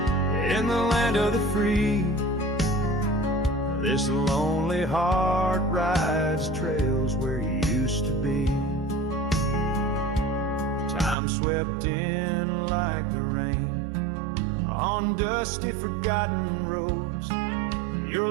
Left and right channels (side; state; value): left; drops out; at 11.2 s